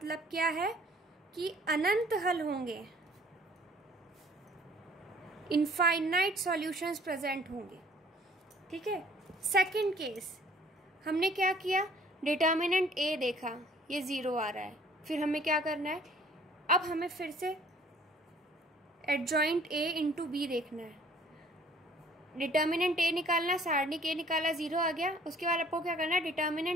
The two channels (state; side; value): normal; both; correlation 0.55